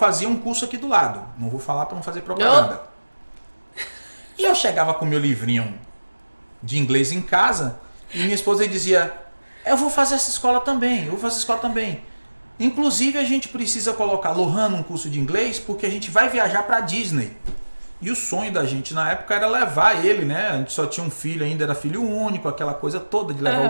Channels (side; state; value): both; inverted; correlation -1.00